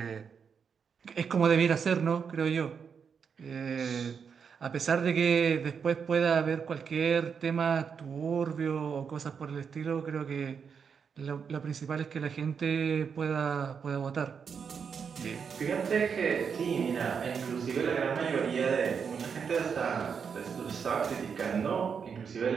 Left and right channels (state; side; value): quieter; left; 6.5 dB